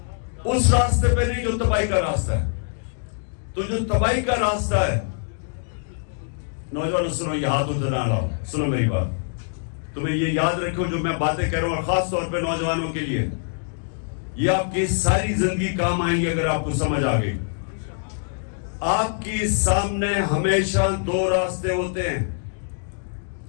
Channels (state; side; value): silent; right; digital silence